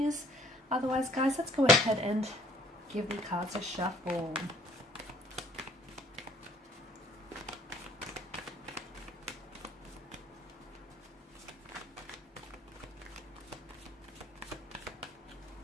Otherwise, guys, let's go ahead and give the cards a shuffle.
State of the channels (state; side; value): normal; both; correlation 0.58